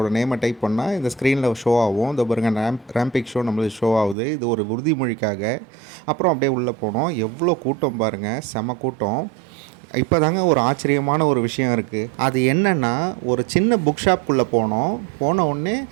நேமை டைப் பண்ணால் இந்த ஸ்க்ரீனில் ஷோ ஆகும். இந்த பாருங்க, ரேம்பிக் ஷோ நம்மளுக்கு ஷோ ஆகுது. இது ஒரு உறுதிமொழிக்காக. அப்புறம் அப்படியே உள்ளே போனோம். எவ்வளோ கூட்டம் பாருங்கள், செம கூட்டம். இப்போ தாங்க ஒரு ஆச்சரியமான ஒரு விஷயம் இருக்குது. அது என்னென்னா, ஒரு சின்ன புக் ஷாப்புக்குள்ளே போன உடனே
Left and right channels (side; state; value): left; drops out; at 4.2 s